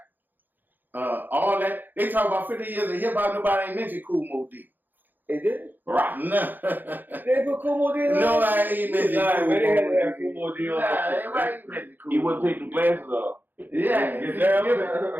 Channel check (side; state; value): left; late; 0.088 ms